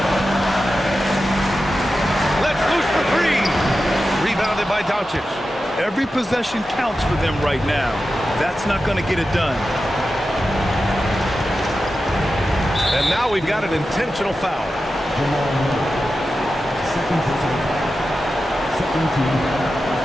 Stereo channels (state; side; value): normal; both; correlation 0.92